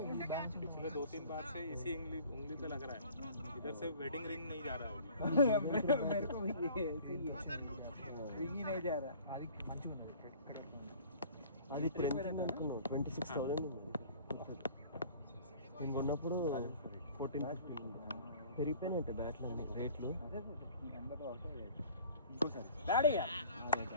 पिछले 2-3 बार से इसी उंगली पे लग रहा है इधर से वेडिंग रिंग नहीं जा रहा है मेरे को भी ये ऐसे ही है रिंग ही नहीं जा रहा అది మంచిగా ఉంది ఇక్కడ అది ఇప్పుడు ఎంత అనుకున్నావు 26,000 ఉంది నేను కొన్నప్పుడు 14-15 పెరిగిపోయినట్టే బ్యాట్లు అన్ని రేట్లు ఇంకోసారి బ్యాటింగ్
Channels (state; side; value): inverted; both; correlation -0.49